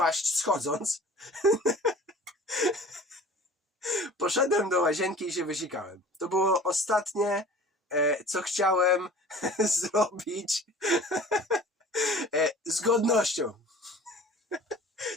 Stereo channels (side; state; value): both; normal; correlation 0.43